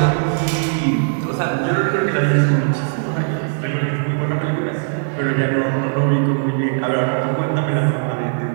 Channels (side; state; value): left; silent; 61 dB below the other